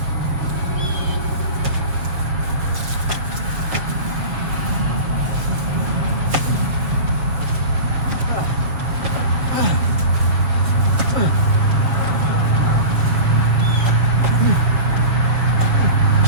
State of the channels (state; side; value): late; left; 6.8 ms